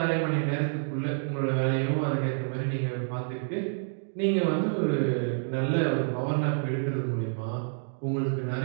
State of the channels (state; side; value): silent; left; digital silence